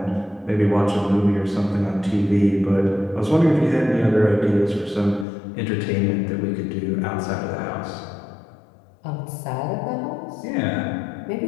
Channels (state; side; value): drops out; right; at 5.2 s